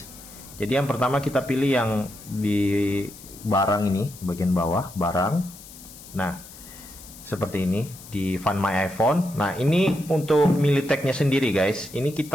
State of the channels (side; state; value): left; noise; hiss, 18 dB below the sound